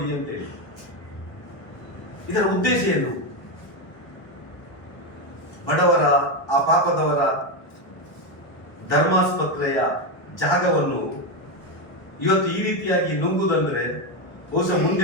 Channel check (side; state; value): right; late; 1.1 ms